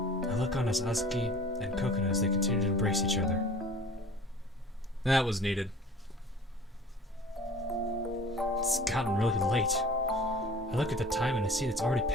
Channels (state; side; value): normal; both; correlation 0.44